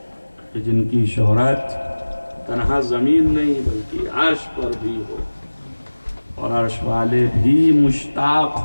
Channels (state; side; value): inverted; both; correlation -1.00